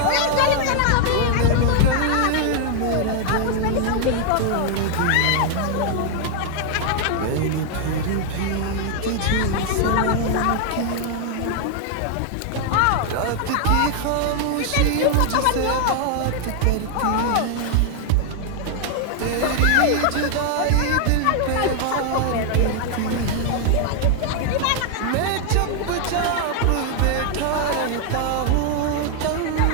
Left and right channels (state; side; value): different; both; correlation 0.00